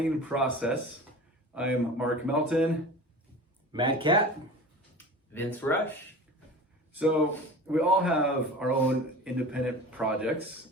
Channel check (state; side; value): normal; both; correlation 0.36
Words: process. I am Mark Melton. Mad Cat. Vince Rush. So we all have our own independent projects